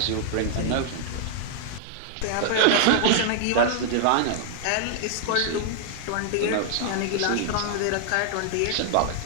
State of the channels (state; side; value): different; both; correlation -0.01